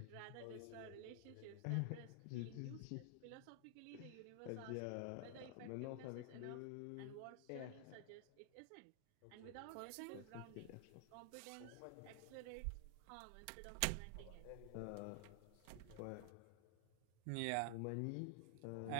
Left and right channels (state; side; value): different; both; correlation 0.00